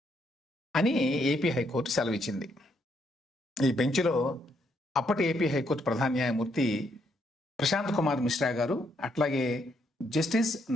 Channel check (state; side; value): normal; both; correlation 0.74